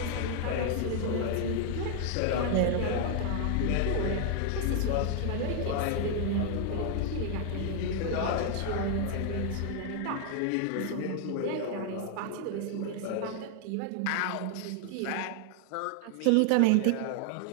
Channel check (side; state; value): both; different; correlation 0.00